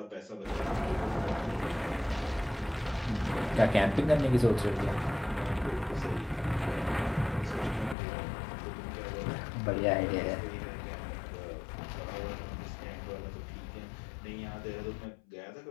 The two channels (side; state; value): right; drops out; at 8.0 s